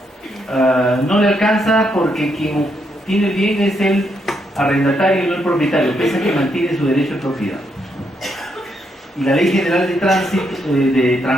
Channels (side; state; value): both; normal; correlation 0.78